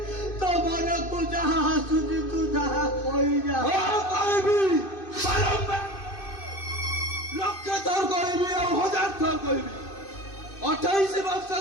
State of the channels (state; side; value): late; right; 2.6 ms